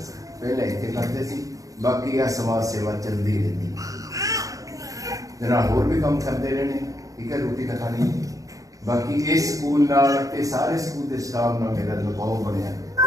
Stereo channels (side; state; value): left; late; 0.17 ms